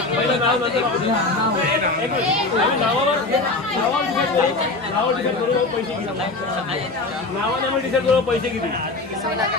नावाने डिसाईड करू पैसे किती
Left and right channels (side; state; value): right; quieter; 3.2 dB